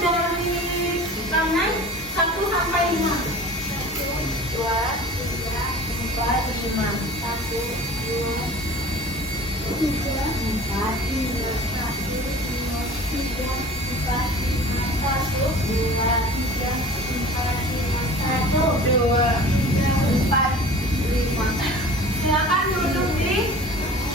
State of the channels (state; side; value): normal; both; correlation 0.41